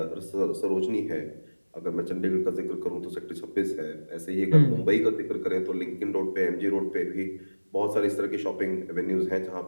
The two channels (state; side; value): inverted; both; correlation -1.00